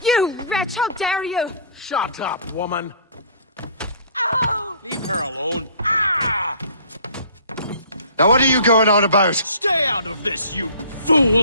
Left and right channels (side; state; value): both; inverted; correlation -0.48